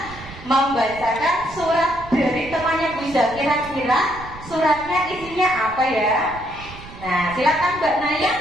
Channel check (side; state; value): right; noise; rumble, 16 dB below the sound